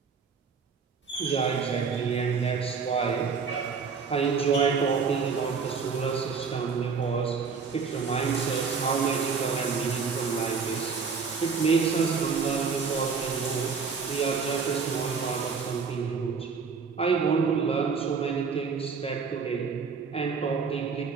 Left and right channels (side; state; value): left; quieter; 5.4 dB